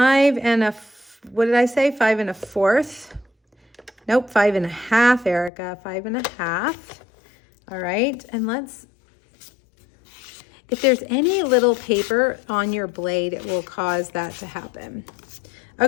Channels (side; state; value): right; drops out; at 5.5 s